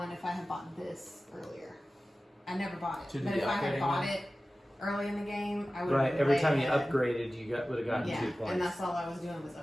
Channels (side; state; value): both; normal; correlation 0.96